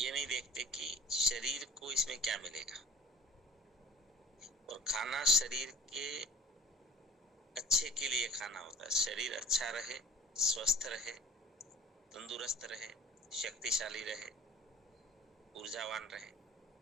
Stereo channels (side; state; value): both; normal; correlation 0.44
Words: नहीं देखते कि शरीर को इसमें क्या मिलेगा। और खाना शरीर के अच्छे के लिए खाना होता है, शरीर अच्छा रहे, स्वस्थ रहे, तंदुरुस्त रहे, शक्तिशाली रहे, ऊर्जावान रहे,